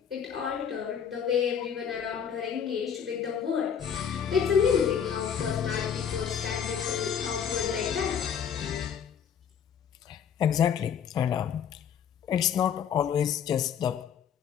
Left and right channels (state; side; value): quieter; right; 7.9 dB